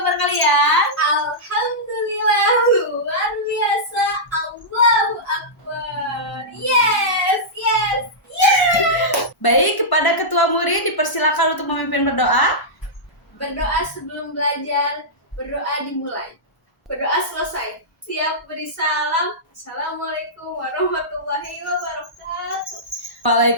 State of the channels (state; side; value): normal; both; correlation -0.12